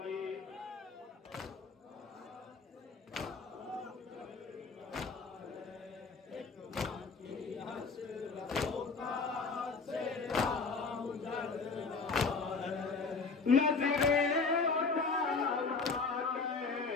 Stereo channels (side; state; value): right; quieter; 4.5 dB